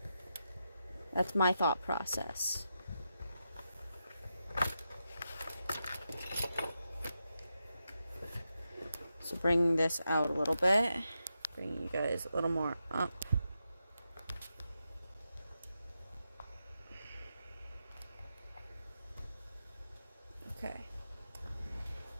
that's my thought process. So bring this out a little bit, bring you guys a little more up. Okay.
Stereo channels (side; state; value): both; inverted; correlation -0.87